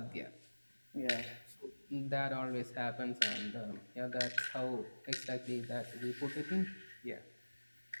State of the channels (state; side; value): inverted; both; correlation -1.00